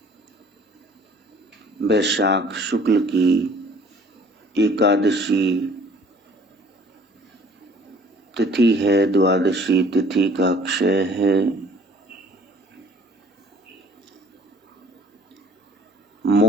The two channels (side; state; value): both; normal; correlation 0.54